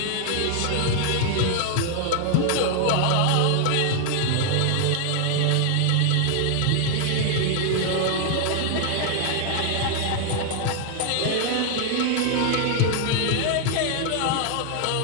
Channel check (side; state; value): both; different; correlation 0.00